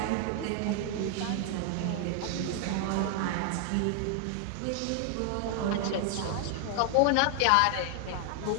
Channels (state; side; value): different; both; correlation 0.00